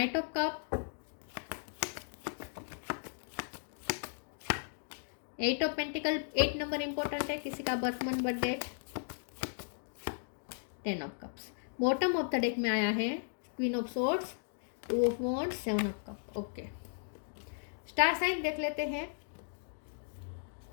of cup, 8 of pentacle. 8 number important है, किसी का birth month birth date. 10 of cups. Bottom of the deck में आया है queen of swords, 2 of wands, 7 of cup. Okay, star sign देख लेते हैं।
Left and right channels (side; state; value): right; silent; digital silence